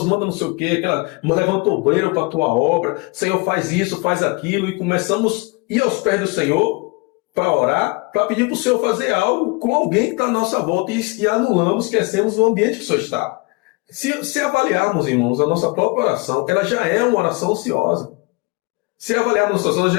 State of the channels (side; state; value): right; quieter; 26.9 dB